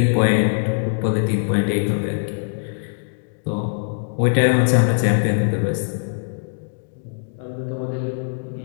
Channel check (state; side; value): silent; right; digital silence